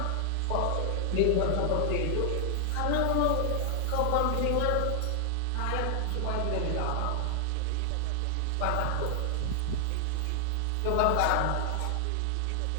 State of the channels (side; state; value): both; different; correlation 0.00